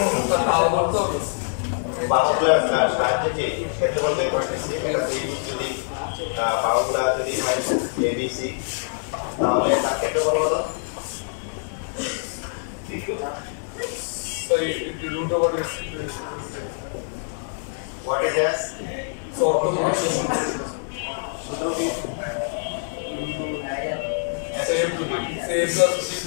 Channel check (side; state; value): right; silent; 62 dB below the other